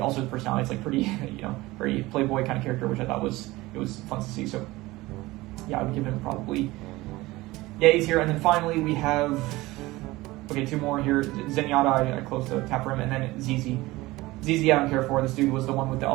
his personality is like pretty, very playboy kind of character, which I thought was fun to see. So yeah, I would give him probably A tier. And then finally we have two more here. Zenyatta, I closed the tab for him, and then ZZ. ZZ I don't care for. This dude was the one with the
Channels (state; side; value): quieter; left; 19.7 dB